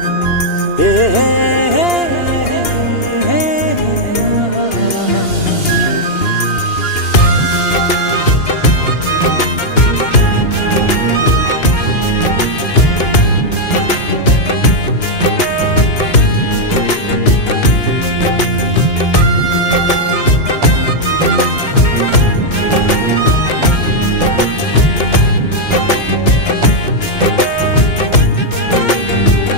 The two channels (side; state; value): right; late; 2.8 ms